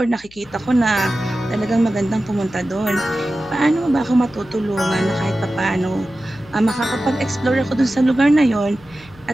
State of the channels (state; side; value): noise; left; hum, 25 dB below the sound